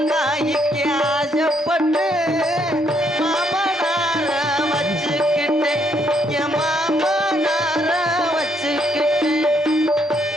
காய்க்கு ஆசைப்பட்டு மாமனார வச்சுக்கிட்டு என் மாமனார வச்சுக்கிட்டு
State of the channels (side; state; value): both; normal; correlation 0.72